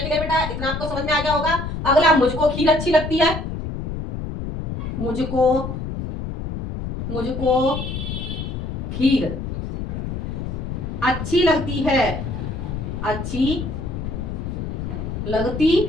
ठीक है बेटा? इतना आपको समझ में आ गया होगा। अगला, मुझको खीर अच्छी लगती है। मुझको, मुझको खीर अच्छी लगती है, अच्छी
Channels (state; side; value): noise; left; rumble, 5 dB below the sound